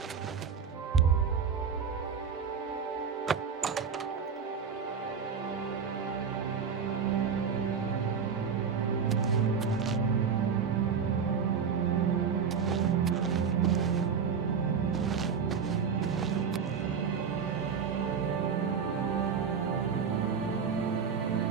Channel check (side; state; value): left; quieter; 6.4 dB